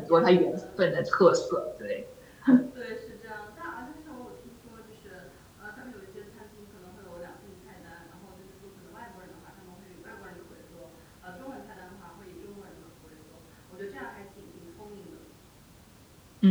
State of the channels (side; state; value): both; identical; correlation 1.00